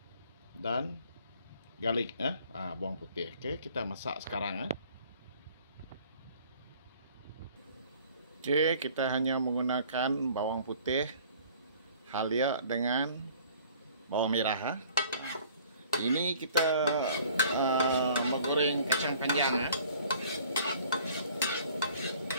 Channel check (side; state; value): both; inverted; correlation -0.53